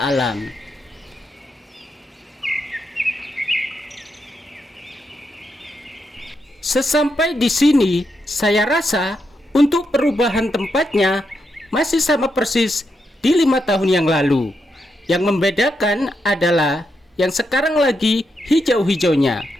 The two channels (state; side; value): normal; both; correlation 0.83